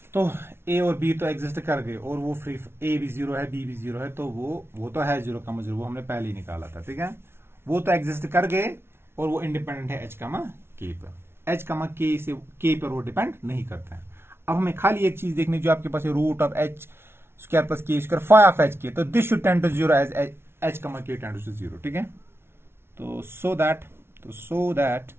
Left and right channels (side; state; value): left; late; 0.12 ms